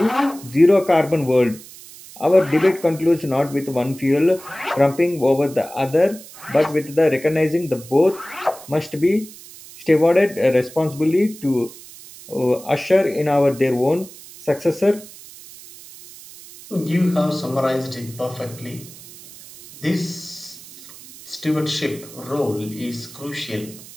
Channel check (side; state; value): right; noise; hiss, 18 dB below the sound